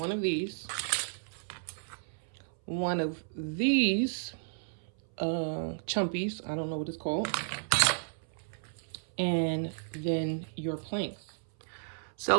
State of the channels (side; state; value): left; silent; 56 dB below the other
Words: of these chumpies, I don't know what it's called, and then your planks.